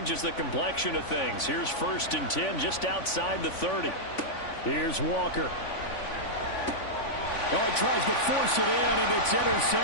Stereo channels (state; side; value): late; right; 3.5 ms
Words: the complexion of things. Here's 1st and 10 just outside the 30. Here's Walker. Oh, he tries to force it in, and it's